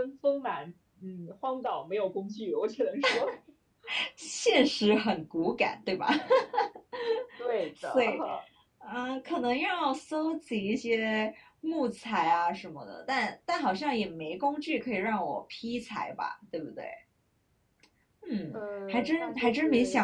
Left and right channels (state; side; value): identical; both; correlation 1.00